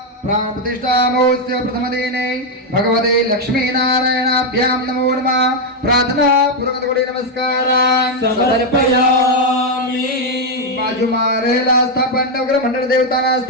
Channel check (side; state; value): both; normal; correlation 0.02